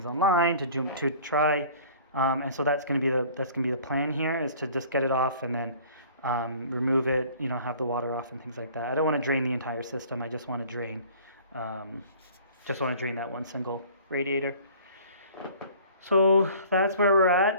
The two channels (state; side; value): inverted; both; correlation -0.49